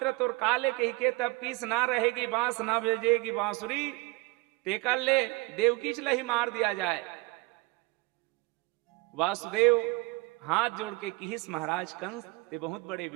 तोर काले कही के तब किस ना रहेगी बांस ना भेजेगी बांसुरी, तेकर ले देवकी चला ही मार दिया जाए। वासुदेव हाथ जोड़ के किहिस महाराज कंस ते बहुत बड़े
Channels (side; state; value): left; quieter; 22.4 dB